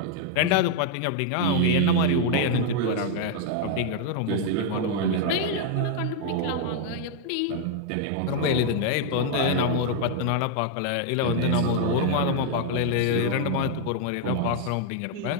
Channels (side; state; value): both; different; correlation 0.00